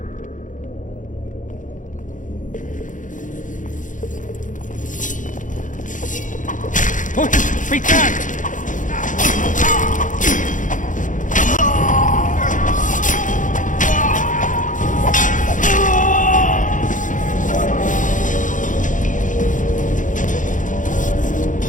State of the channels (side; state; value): right; late; 0.37 ms